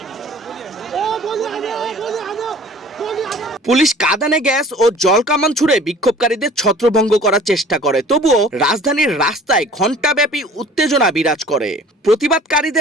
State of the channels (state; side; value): normal; both; correlation 0.48